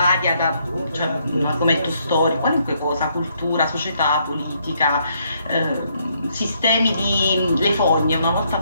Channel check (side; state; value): both; inverted; correlation -0.72